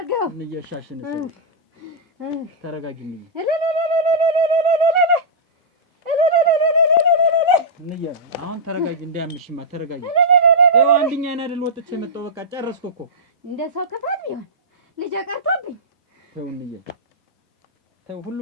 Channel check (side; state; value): both; normal; correlation -0.12